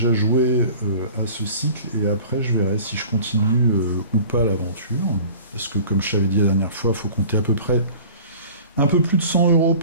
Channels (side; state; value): both; inverted; correlation -0.44